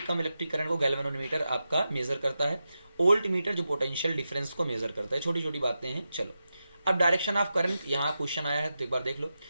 कम इलेक्ट्रिक करंट को गैल्वेनोमीटर आपका मेजर करता है। ओल्ट मीटर जो पोटेंशियल डिफरेंस को मेजर करता है। छोटी छोटी बातें हैं। चलो अब डायरेक्शन ऑफ करंट, यहाँ क्वेश्चन आया है तो एक बार देख लो।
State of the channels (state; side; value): inverted; both; correlation -0.90